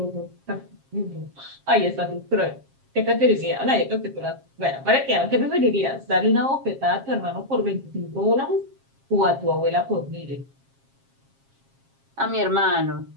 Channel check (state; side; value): late; left; 7.4 ms